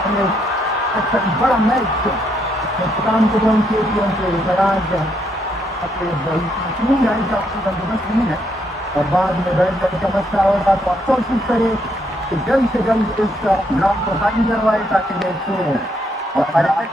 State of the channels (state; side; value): normal; both; correlation 0.74